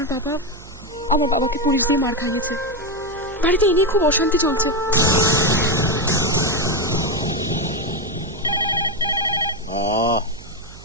বাবা আমার বাবাকে পুলিশ দিয়ে মার খাইয়েছে। বাড়িতে এ নিয়ে খুব অশান্তি চলছে।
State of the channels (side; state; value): right; noise; hum, 19 dB below the sound